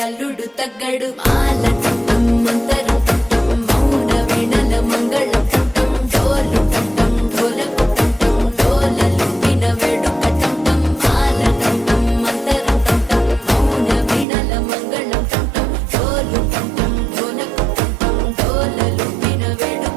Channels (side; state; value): left; drops out; at 14.2 s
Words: అల్లుడు తగ్గడు మాల టం మంతరం టం మౌన వీణల మంగళం టం డోలు టం ఢోలకు టం డోలలు విన వేడుక టం మాల టం మంతరం టం మౌన వీణల మంగళం టం డోలు టం ఢోలకు టం డోలలు విన